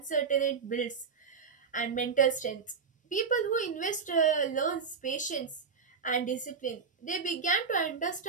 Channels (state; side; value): quieter; left; 5.5 dB